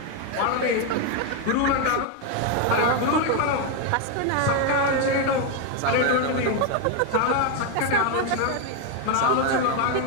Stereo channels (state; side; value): different; both; correlation 0.02